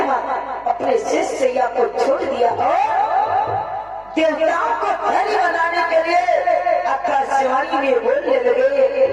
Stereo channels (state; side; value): noise; right; hum, 27 dB below the sound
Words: अपने शेषैया को छोड़ दिया और देवताओं को धैर्य बनाने के लिए आकाशवाणी में बोलने लगे।